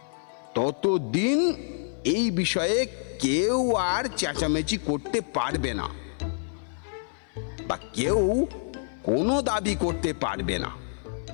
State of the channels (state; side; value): silent; right; 55 dB below the other